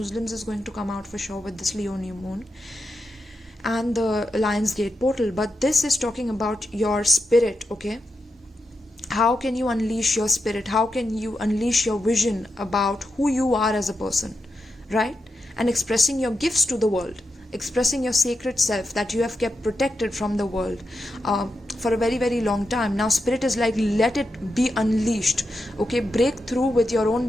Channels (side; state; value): both; normal; correlation 0.87